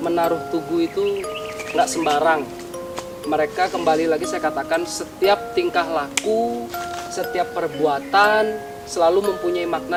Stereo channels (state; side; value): identical; both; correlation 1.00